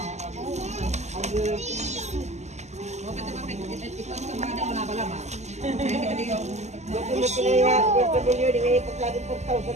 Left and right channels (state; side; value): late; left; 0.33 ms